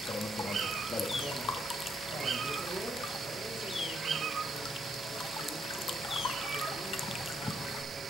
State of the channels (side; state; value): both; normal; correlation 0.75